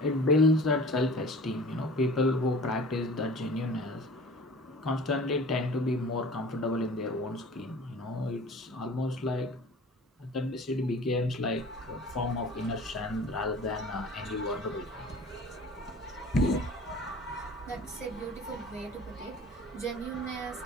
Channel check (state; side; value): normal; both; correlation 0.43